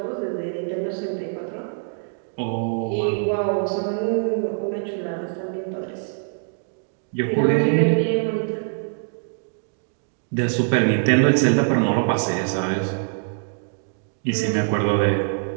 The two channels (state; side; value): silent; left; digital silence